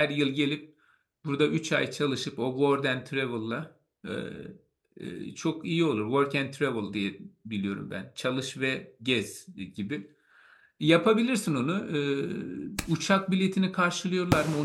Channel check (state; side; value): identical; both; correlation 1.00